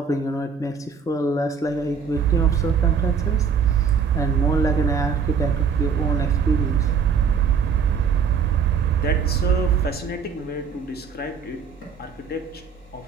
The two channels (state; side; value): quieter; left; 6.2 dB